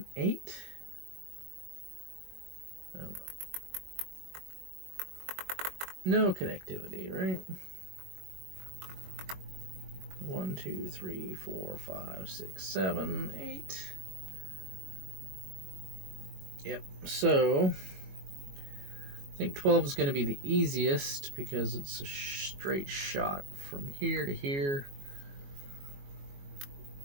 8. No connectivity, right? 1, 2, 3, 4, 5, 6, 7, 8. Yep, so I think 12 is going to be the easiest because it's a straight shot from here to here.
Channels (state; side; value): late; left; 21 ms